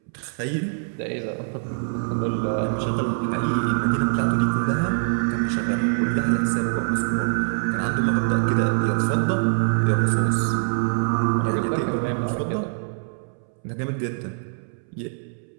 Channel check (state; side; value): silent; left; 63 dB below the other